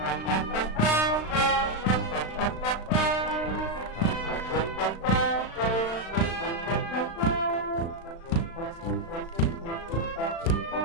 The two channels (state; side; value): late; right; 36 ms